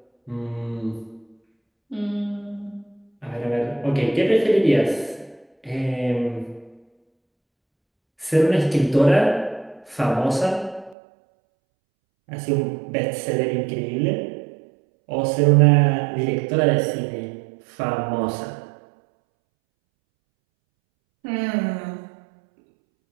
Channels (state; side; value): drops out; left; at 11.0 s